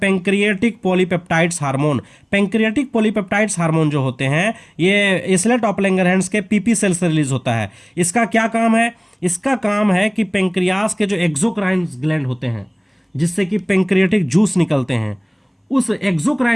polypeptides hormone. Pancreatic polypeptides hormone जो होते हैं, ये इसलेट ऑफ लैंगरहैंस के पीपी सेल से रिलीज होता है। इसका क्या काम है? इसका काम है कि पेंक्रियास के जो एक्सोक्राइन ग्लैंड होते हैं, जिससे कि पेंक्रियाटिक जूस निकलते हैं, उस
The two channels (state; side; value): identical; both; correlation 1.00